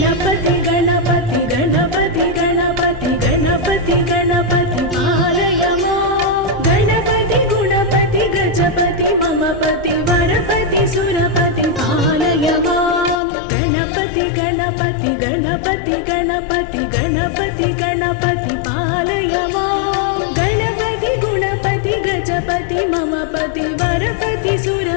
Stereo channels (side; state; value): right; drops out; at 13.2 s